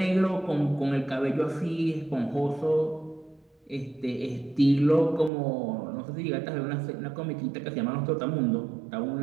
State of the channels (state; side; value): drops out; left; at 5.3 s